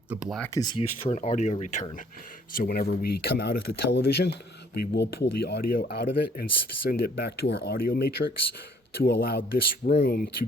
The black is used for an audio return. So whenever we come out of the television, we will pull the audio out of it and send it back to our audio matrix to allow this room to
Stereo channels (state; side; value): normal; both; correlation 0.60